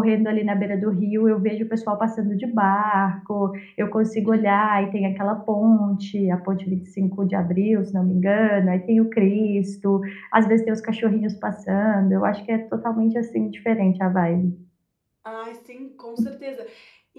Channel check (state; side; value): identical; both; correlation 1.00